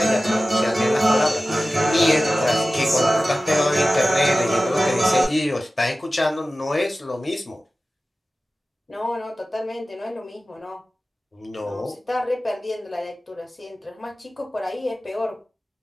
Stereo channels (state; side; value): normal; both; correlation 0.95